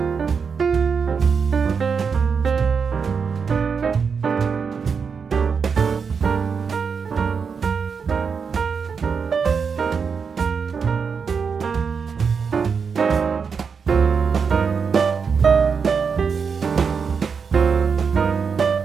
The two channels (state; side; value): quieter; left; 5.9 dB